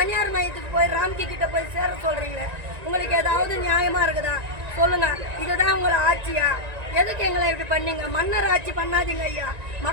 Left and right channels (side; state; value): left; late; 1.9 ms